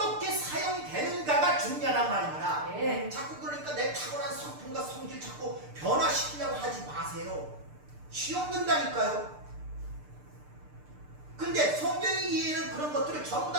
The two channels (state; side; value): late; left; 6.7 ms